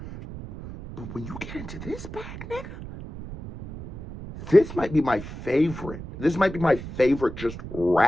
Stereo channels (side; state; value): right; noise; rumble, 11 dB below the sound